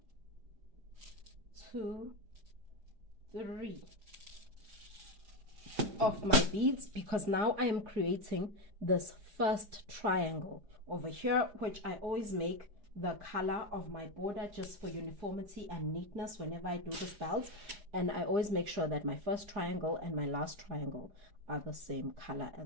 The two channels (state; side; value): late; left; 4.9 ms